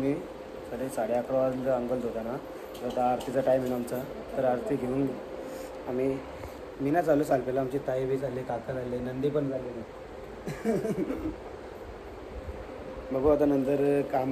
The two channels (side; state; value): both; identical; correlation 1.00